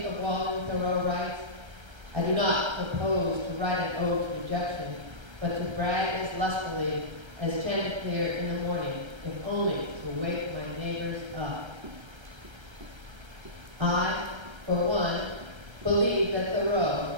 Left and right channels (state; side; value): late; left; 1.3 ms